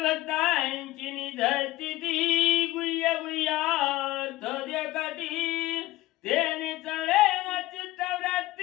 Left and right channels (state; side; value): quieter; right; 17.4 dB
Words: भक्तांची निधरती ती, गुह्य गुह्यार्थ देखती, तेने चळे न